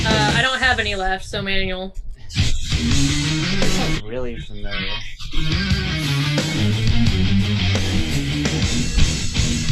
I don't have any left, so Manuel. This sounds really familiar.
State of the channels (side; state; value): both; identical; correlation 1.00